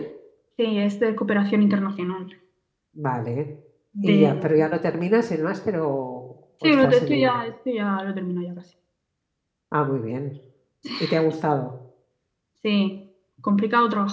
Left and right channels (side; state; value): both; identical; correlation 1.00